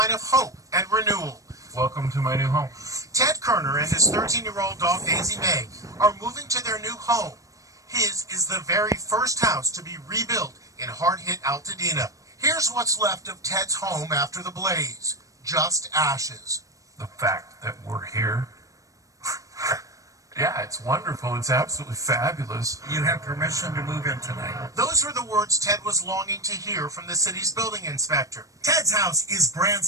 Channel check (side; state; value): left; late; 0.16 ms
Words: of hope and renewal. Welcome to my new home. Ted Kerner and his 13-year-old dog Daisy May are moving to their new home. His is the very first house to be rebuilt in hard-hit Altadena. Here's what's left of Ted's home after the blaze. Just ashes. The fact that we're here, yeah, it's wonderful. It's absolutely fabulous. You have permission to move in tonight. Those were the words Ted was longing to hear from the city's building inspector. Ted's house is brand